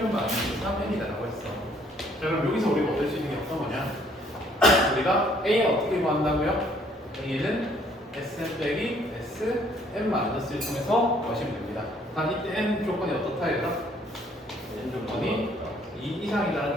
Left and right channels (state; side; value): normal; both; correlation 0.62